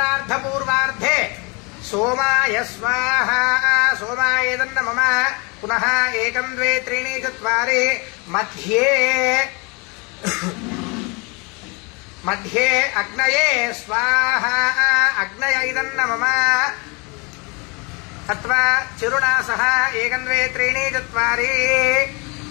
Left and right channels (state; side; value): quieter; right; 29.8 dB